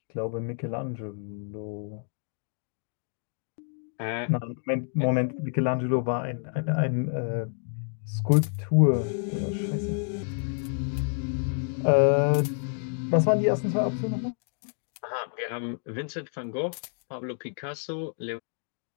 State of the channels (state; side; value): silent; right; 59 dB below the other